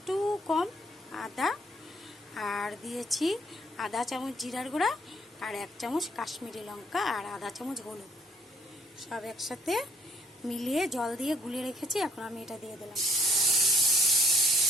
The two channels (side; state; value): both; normal; correlation 0.63